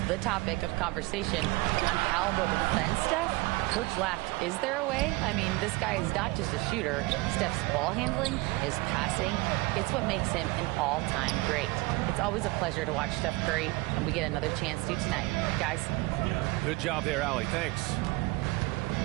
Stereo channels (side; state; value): left; quieter; 22.6 dB